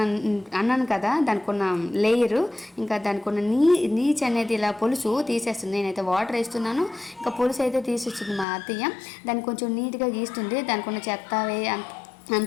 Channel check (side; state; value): right; drops out; at 8.5 s